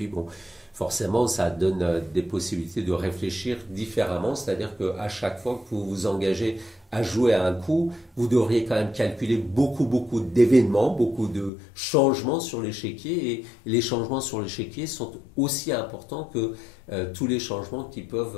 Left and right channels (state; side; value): drops out; right; at 11.5 s